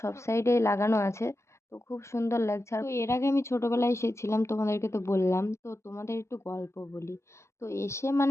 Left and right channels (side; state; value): right; late; 0.13 ms